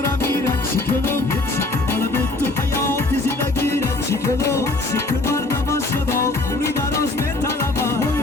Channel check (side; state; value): right; quieter; 3.0 dB